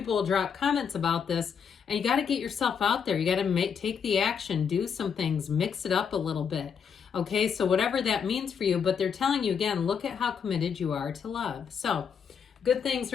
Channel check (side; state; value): right; quieter; 6.9 dB